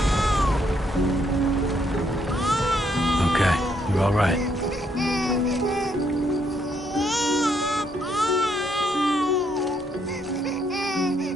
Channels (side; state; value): both; normal; correlation 0.73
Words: Okay, you're all right.